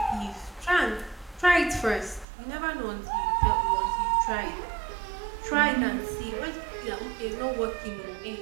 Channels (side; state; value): left; drops out; at 2.2 s